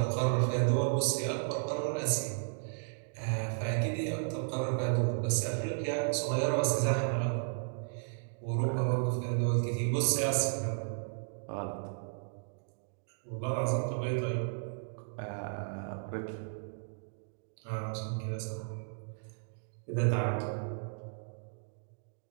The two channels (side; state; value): left; silent; digital silence